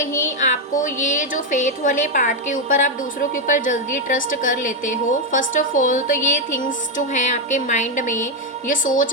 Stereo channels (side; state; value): both; normal; correlation 0.04